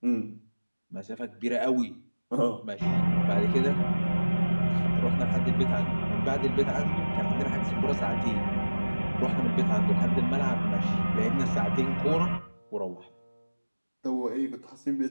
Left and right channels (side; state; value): both; inverted; correlation -1.00